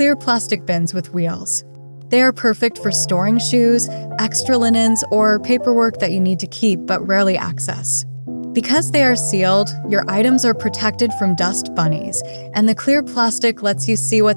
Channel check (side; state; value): both; inverted; correlation -1.00